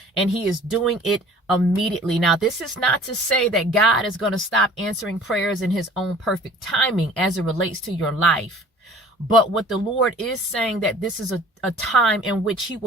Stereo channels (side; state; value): both; normal; correlation 0.49